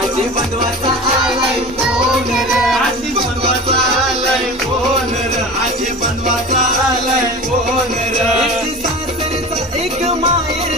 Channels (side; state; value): both; normal; correlation 0.34